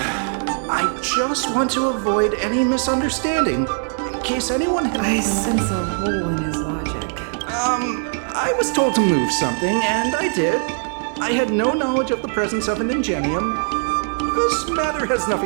I just want to avoid any misunderstanding, in case anyone had... I sense a hole in his logic. I was told to move something, and I did. I had no knowledge of the presence of an ingenium. This matter has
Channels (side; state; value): left; silent; 61 dB below the other